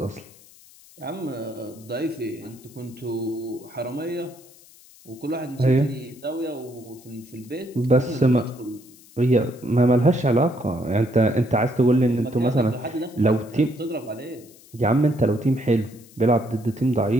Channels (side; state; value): left; noise; hiss, 24 dB below the sound